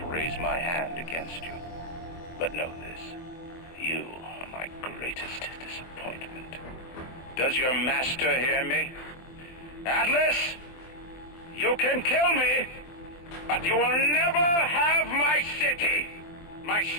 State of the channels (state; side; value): late; right; 23 ms